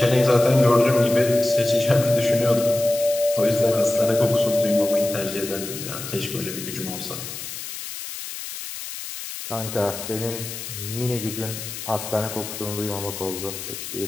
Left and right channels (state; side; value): noise; left; hiss, 9 dB below the sound